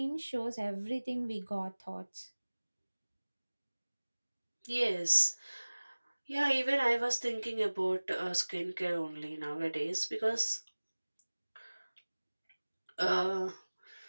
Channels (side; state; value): both; inverted; correlation -1.00